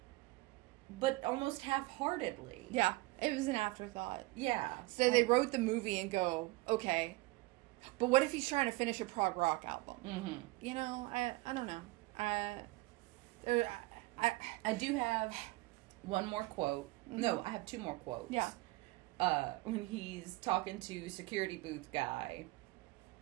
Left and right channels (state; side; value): quieter; left; 21.0 dB